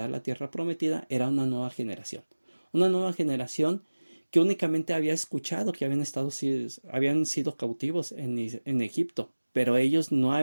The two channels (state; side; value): inverted; both; correlation -1.00